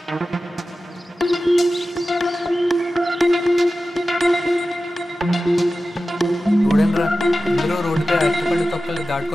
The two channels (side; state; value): both; normal; correlation 0.94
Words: చూడండిరా, అందరూ రోడ్డుపై అరటిపండు తొక్కలు